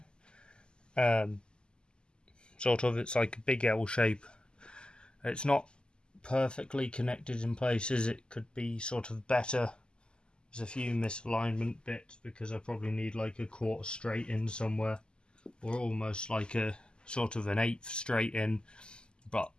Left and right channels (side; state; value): right; late; 0.048 ms